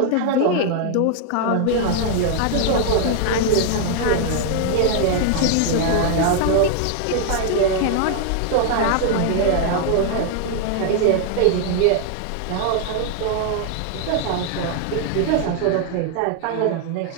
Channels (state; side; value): different; both; correlation 0.00